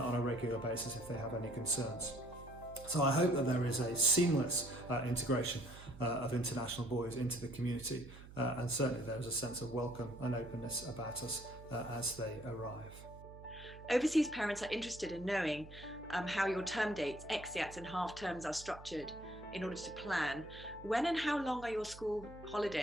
a regular basis if they have any concerns. So I hope that there is a seamless integration of international boys into the community, and certainly there is a sense of welcome and openness about us as they arrive. Overseas parents are interested in knowing how your term dates, exeats and half terms are structured in order to plan. When and how long are your school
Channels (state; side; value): noise; right; hum, 16 dB below the sound